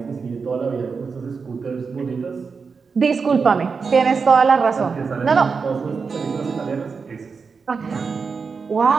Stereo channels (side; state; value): left; quieter; 5.2 dB